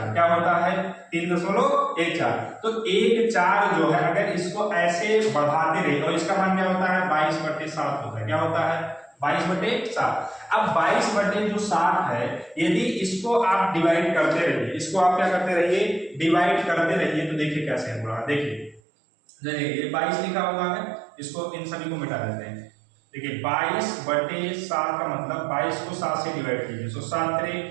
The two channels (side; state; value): left; drops out; at 18.8 s